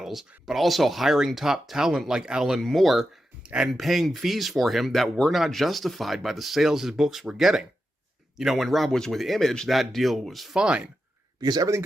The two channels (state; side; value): normal; both; correlation 0.89